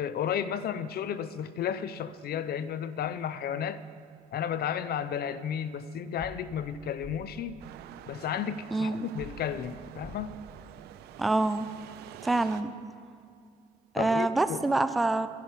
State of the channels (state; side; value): normal; both; correlation 0.61